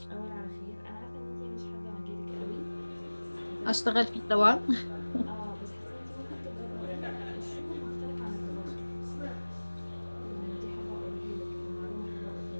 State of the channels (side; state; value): both; inverted; correlation -1.00